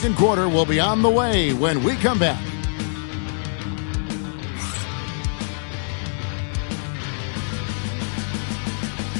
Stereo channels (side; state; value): right; silent; digital silence